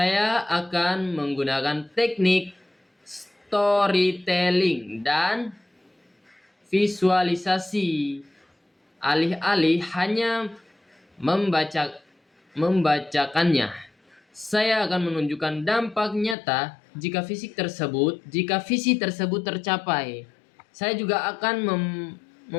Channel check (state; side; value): drops out; right; at 16.4 s